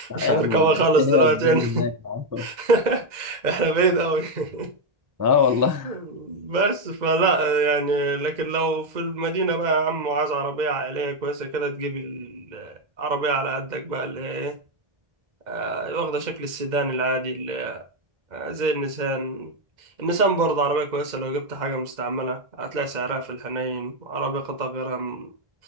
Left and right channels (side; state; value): left; late; 2.0 ms